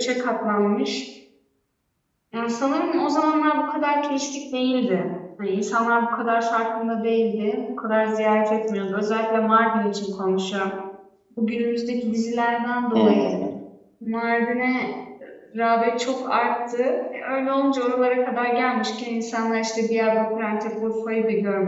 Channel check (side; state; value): both; identical; correlation 1.00